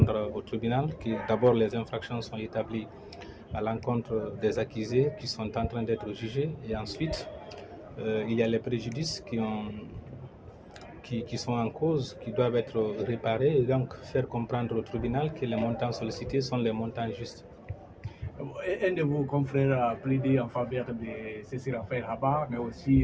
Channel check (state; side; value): identical; both; correlation 1.00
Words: au tribunal que d'abord les infractions sont établies à l'encontre des accusés qui sont en train d'être jugés, et ensuite il y a les préjudices qui sont en cause, qui doivent être réparés, et donc faire comprendre au tribunal que les montants sollicités sont les montants justes. Un de vos confrères a plaidé en faveur de Cécile Raphaël Haba, mais aussi